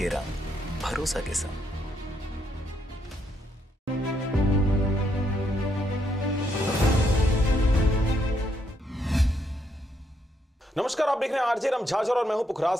रंग, भरोसा के संग। नमस्कार, आप देख रहे हैं आरजे रमझाझर और मैं हूं पुखराज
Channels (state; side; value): normal; both; correlation 0.75